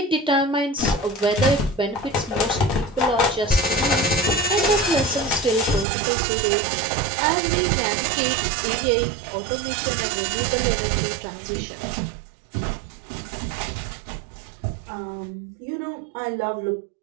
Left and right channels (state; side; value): drops out; left; at 5.9 s